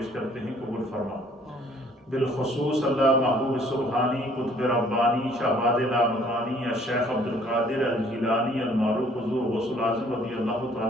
کرتے ہیں، قبول فرما۔ بالخصوص اللہ محبوب سبحانی، قطب ربانی، شہباز لامکانی، الشیخ عبدالقادر الجیلانی المعروف حضور غوث العظم رضی اللہ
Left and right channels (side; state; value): both; normal; correlation 0.59